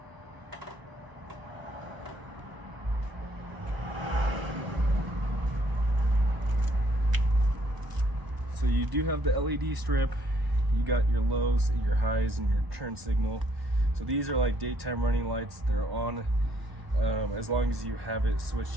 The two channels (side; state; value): left; late; 1.0 ms